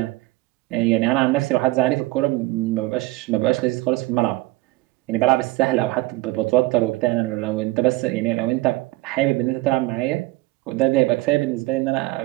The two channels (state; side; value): quieter; left; 20.0 dB